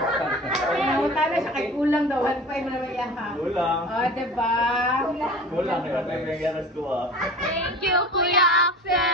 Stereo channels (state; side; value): normal; both; correlation 0.37